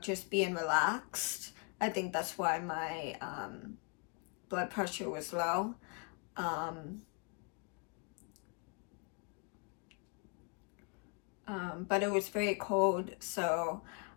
just being relaxed. I think that's why my blood pressure was low. But it was very cold, so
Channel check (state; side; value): quieter; right; 35.1 dB